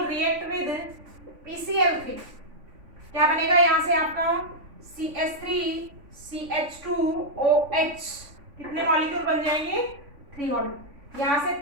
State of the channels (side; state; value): left; late; 3.5 ms